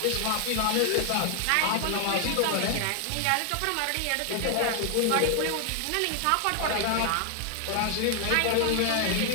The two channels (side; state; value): both; different; correlation 0.00